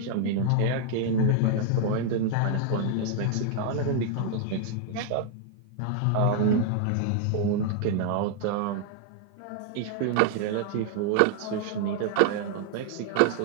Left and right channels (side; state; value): both; different; correlation 0.00